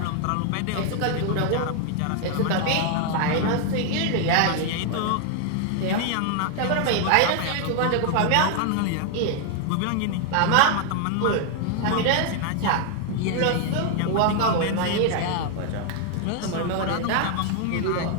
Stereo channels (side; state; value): both; different; correlation 0.00